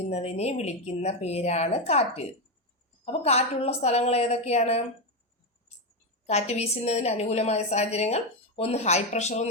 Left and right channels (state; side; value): normal; both; correlation 0.09